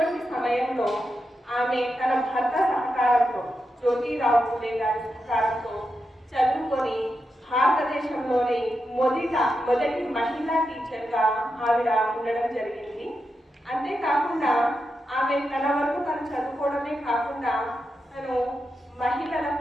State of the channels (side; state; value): both; normal; correlation 0.87